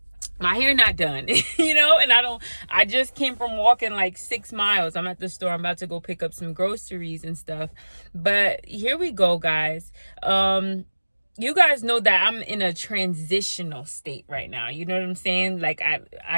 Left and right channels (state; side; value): inverted; both; correlation -1.00